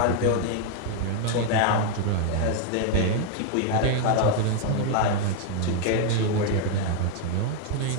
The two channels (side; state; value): both; different; correlation 0.00